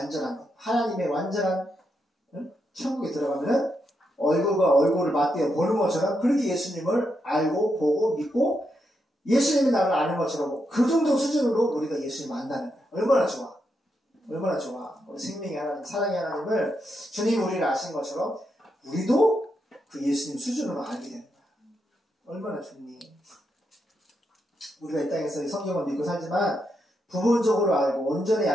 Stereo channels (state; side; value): normal; both; correlation 0.82